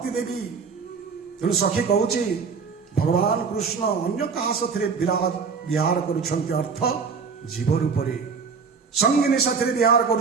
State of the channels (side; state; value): left; quieter; 5.4 dB